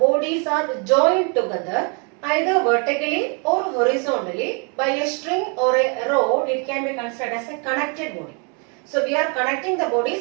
are joined together either vertically or horizontally by a string or a rod, it can be considered as a connected body. So we are connecting the bodies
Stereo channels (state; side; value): quieter; left; 36.2 dB